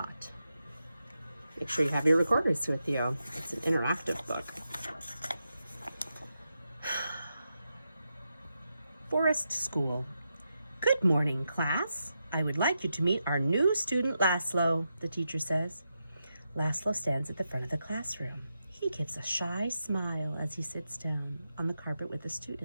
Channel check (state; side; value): inverted; both; correlation -0.87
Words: Make sure you have your recorders with you. It's an interactive book. Forest School. Good morning, class. I would like you to meet our new student, Lazlo, the teacher says. Lazlo stands at the front of the classroom. He gives a shy smile as he sits down on the carpet with the